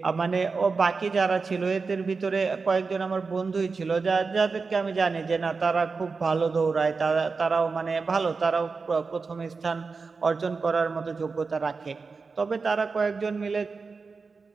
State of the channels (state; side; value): quieter; left; 4.5 dB